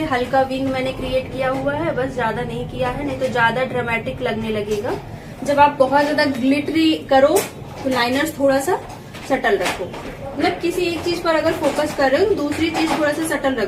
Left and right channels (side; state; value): both; identical; correlation 1.00